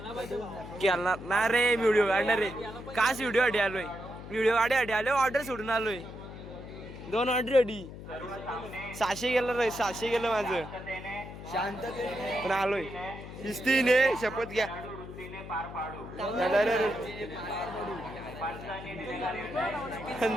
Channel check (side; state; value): left; noise; hum, 12 dB below the sound